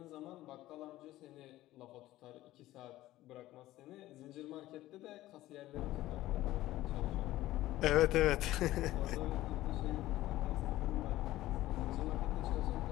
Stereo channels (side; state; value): right; quieter; 15.8 dB